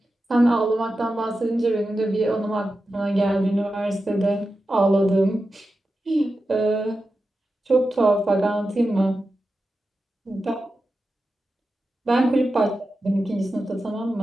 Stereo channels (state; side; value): normal; both; correlation 0.91